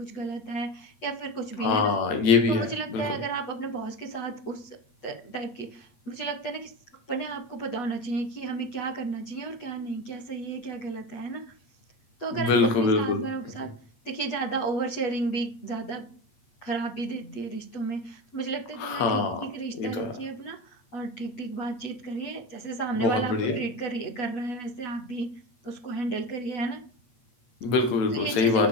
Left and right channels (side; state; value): right; late; 8.1 ms